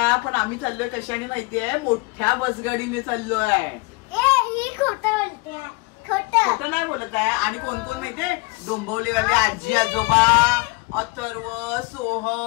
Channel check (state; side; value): quieter; right; 26.9 dB